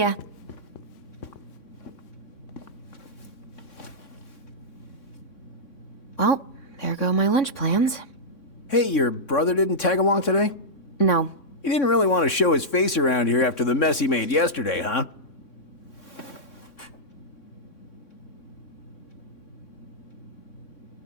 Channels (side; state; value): right; late; 3.6 ms